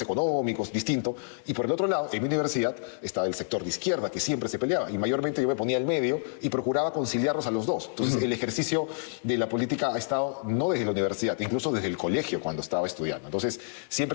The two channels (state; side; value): silent; right; digital silence